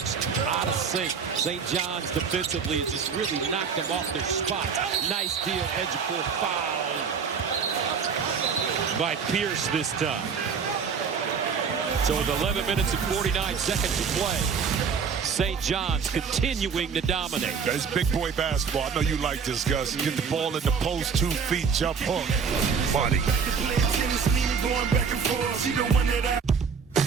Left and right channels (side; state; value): left; quieter; 6.1 dB